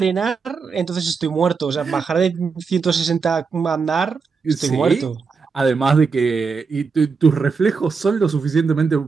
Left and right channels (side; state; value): left; quieter; 5.1 dB